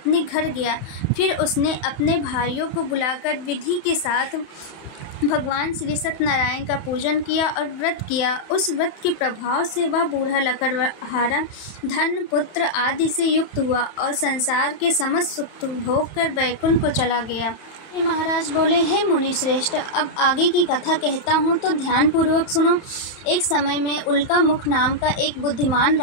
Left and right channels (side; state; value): right; late; 31 ms